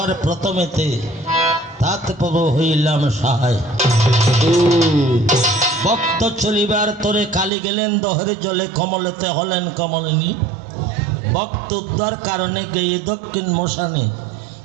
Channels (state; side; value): drops out; left; at 7.5 s